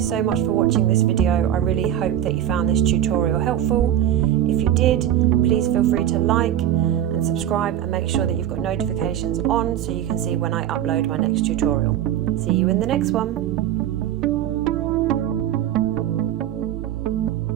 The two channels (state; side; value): quieter; left; 11.2 dB